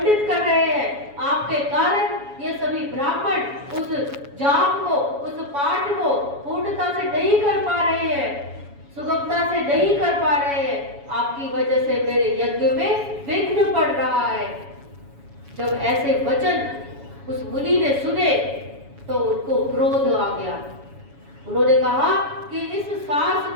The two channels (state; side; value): late; left; 7.1 ms